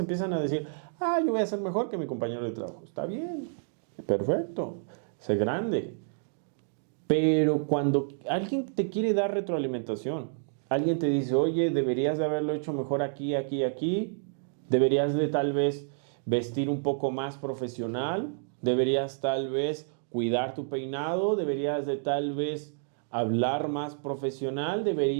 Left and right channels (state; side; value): silent; left; digital silence